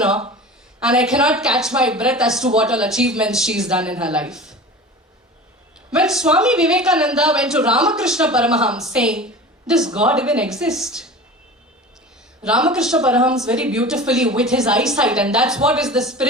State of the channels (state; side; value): normal; both; correlation 0.35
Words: and I cannot catch my breath as to what all achievements she's done in her life. When Swami Vivekananda went to Ramakrishna Paramahams saying, does God even exist? Ramakrishna Paramahams very beautifully with his eyesight, and that's what is the